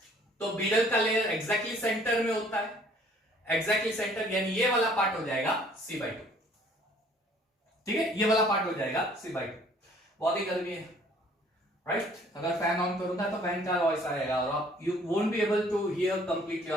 तो बीडल का लेयर एग्जैक्टली सेंटर में होता है, एग्जैक्टली सेंटर, यानी ये वाला पार्ट हो जाएगा c/2। ठीक है, ये वाला पार्ट हो जाएगा c/2। बहुत ही गर्मी है, राइट? अगर फैन ऑन करूंगा तो फैन का वॉइस आएगा, और आप you won't be able to hear completely,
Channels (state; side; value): normal; both; correlation 0.57